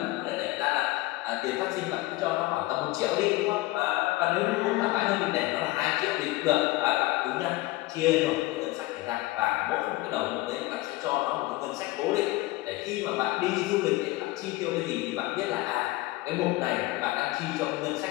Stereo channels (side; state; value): right; quieter; 19.3 dB